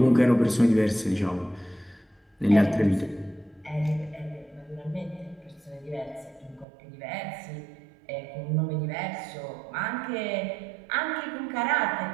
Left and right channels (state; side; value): drops out; left; at 6.7 s